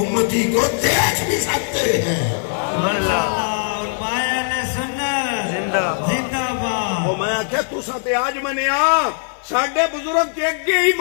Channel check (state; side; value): silent; right; 55 dB below the other